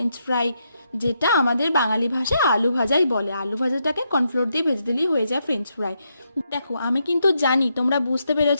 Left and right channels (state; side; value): inverted; both; correlation -0.81